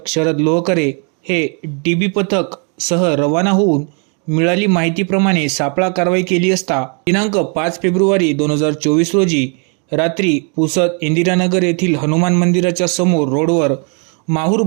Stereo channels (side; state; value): left; quieter; 38.0 dB